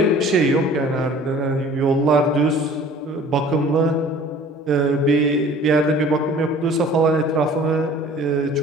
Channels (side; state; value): both; normal; correlation 0.49